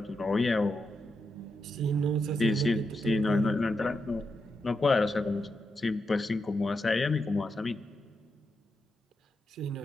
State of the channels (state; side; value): normal; both; correlation 0.86